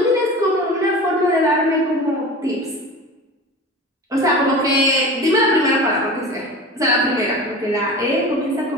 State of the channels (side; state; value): both; normal; correlation 0.34